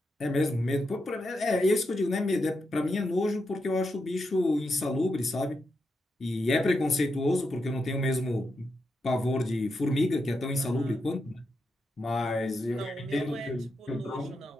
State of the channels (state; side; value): normal; both; correlation 0.85